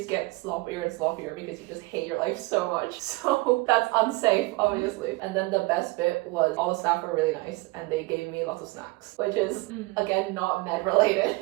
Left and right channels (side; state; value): left; quieter; 23.0 dB